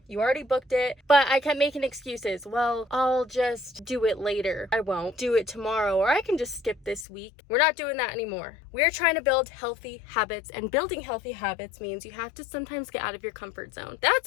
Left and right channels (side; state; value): right; drops out; at 7.1 s